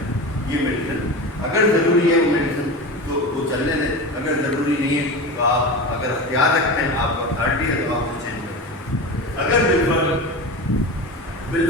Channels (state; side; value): normal; both; correlation 0.27